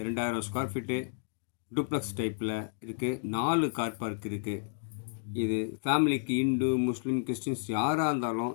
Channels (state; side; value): silent; right; digital silence